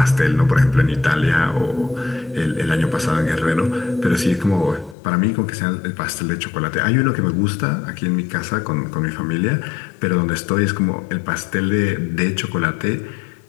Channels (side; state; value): right; drops out; at 5.0 s